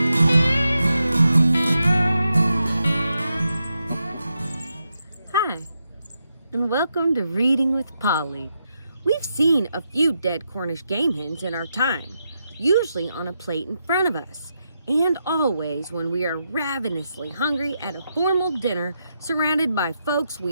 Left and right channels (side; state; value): both; inverted; correlation -0.84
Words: Hi, and welcome to Reading with Polly. We've seen a few dead Cornish game hens in our time, usually on a plate in front of us, and always when we are ravenously hungry at a formal dinner surrounded by folks